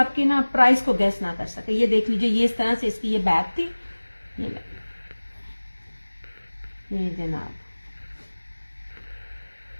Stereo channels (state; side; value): inverted; both; correlation -1.00